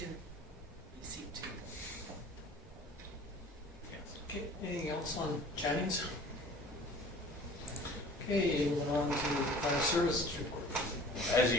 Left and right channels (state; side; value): normal; both; correlation 0.46